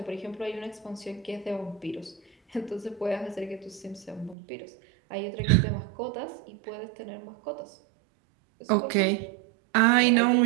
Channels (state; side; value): drops out; left; at 4.4 s